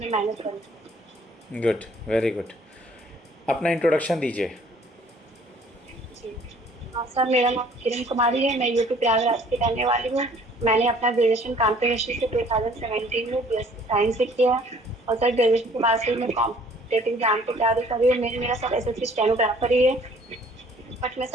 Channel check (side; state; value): both; normal; correlation 0.56